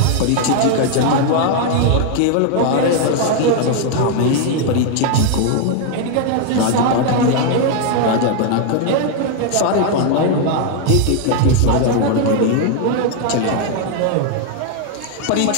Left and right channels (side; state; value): both; different; correlation 0.00